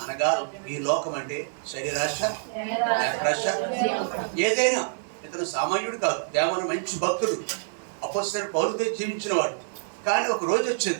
అనగా ఈ లోకం అంటే శరీరాశ, నేత్రాశ, ఏదైనా. ఇతను సామాన్యుడు కాదు, దేవన మంచి భక్తుడు, అపొస్తలుడైన పౌలుతో జీవించిన వాడు. కానీ ఒక రోజు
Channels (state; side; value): silent; left; digital silence